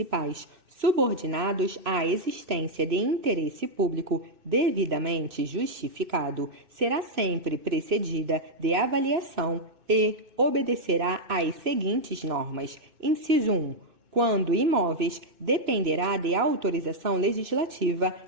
subordinados à existência de interesse público devidamente justificado será sempre precedida de avaliação e obedecerá às seguintes normas. Inciso 1. Quando imóveis, dependerá de autorização legislativa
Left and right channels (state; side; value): late; left; 2.6 ms